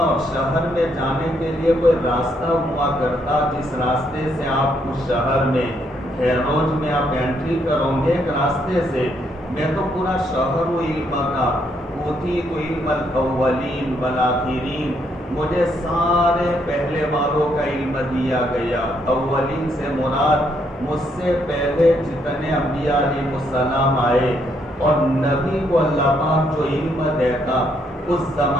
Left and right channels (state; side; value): normal; both; correlation 0.73